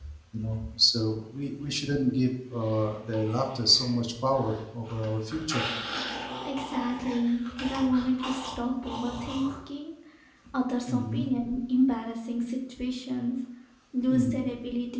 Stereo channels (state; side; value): identical; both; correlation 1.00